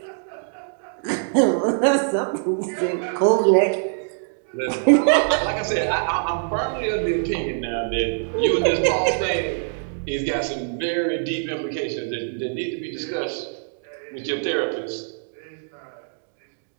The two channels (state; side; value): silent; left; digital silence